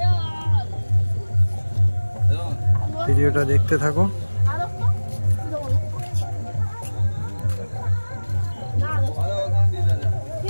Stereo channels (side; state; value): both; inverted; correlation -1.00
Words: ভিডিওটা দেখতে থাকো।